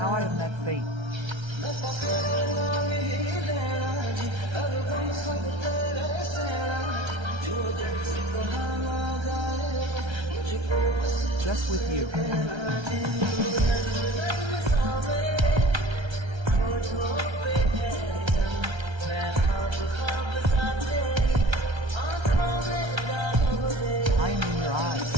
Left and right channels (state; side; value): late; left; 1.3 ms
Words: how I have met fate. Just with you. I am in your eyes,